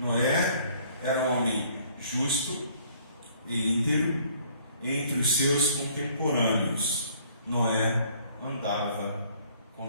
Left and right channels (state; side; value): inverted; both; correlation -0.60